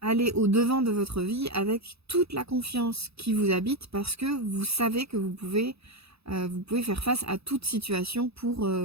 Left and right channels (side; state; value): left; late; 0.78 ms